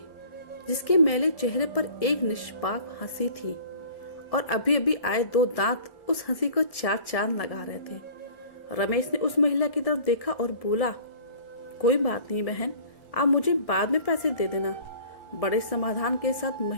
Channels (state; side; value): late; right; 1.7 ms